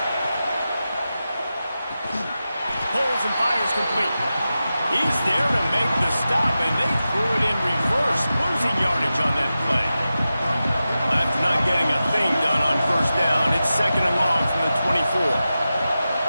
Pulls and fires complete. He's there to make the stop, and they threw it in reverse, losing yardage on that play. After not getting a thing done on 1st down, it's 2nd and long from the 24.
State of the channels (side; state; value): both; inverted; correlation -0.93